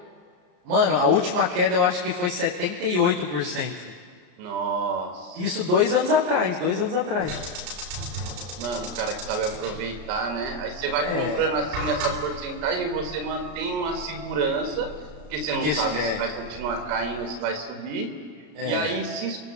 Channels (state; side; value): late; left; 33 ms